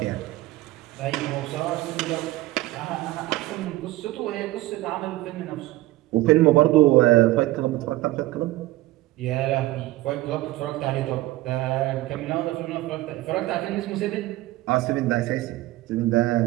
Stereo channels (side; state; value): left; quieter; 17.4 dB